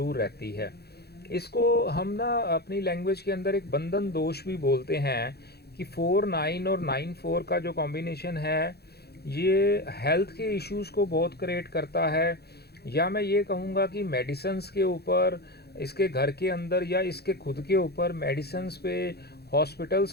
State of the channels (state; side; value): late; right; 0.47 ms